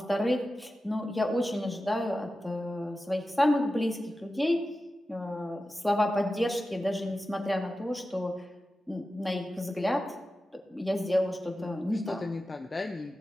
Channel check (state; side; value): normal; both; correlation 0.93